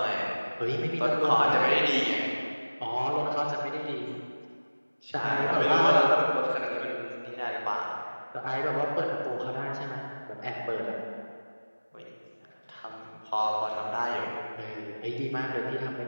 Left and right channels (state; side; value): inverted; both; correlation -1.00